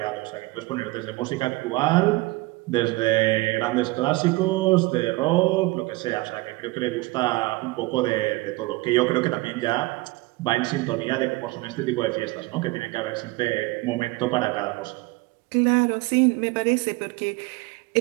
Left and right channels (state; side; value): quieter; left; 21.8 dB